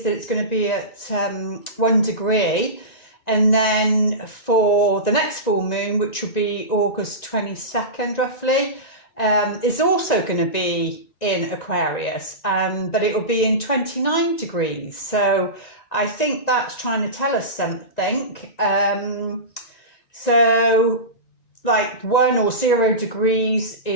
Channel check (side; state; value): right; late; 1.9 ms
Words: that it's going to be at 1 degree, and then for the next full moon, which will be August 22nd roughly, is also going to be in Aquarius, but it will be in 29 degrees. So I think that's trying to tell us something. So like 1 or 0 degrees